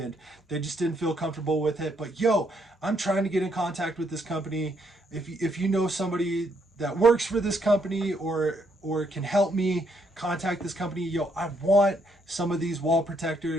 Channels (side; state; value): both; normal; correlation 0.73